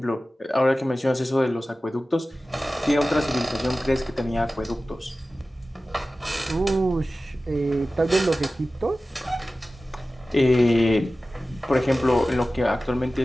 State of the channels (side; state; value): both; normal; correlation 0.96